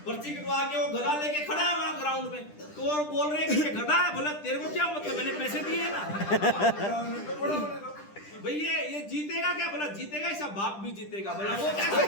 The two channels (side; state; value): right; late; 10 ms